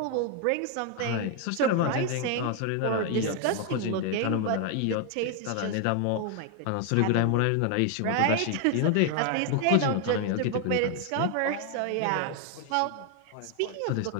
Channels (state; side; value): different; both; correlation 0.01